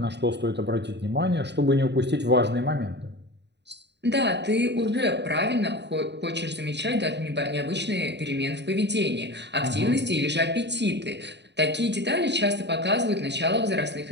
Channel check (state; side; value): late; left; 0.50 ms